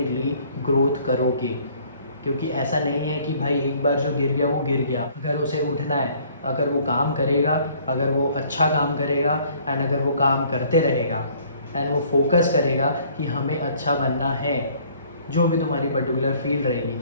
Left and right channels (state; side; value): inverted; both; correlation -0.58